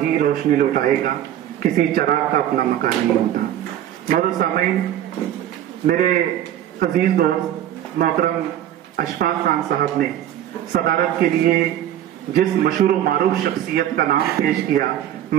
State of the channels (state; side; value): quieter; left; 11.4 dB